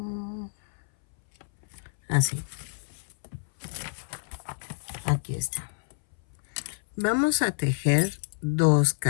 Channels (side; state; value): right; silent; 59 dB below the other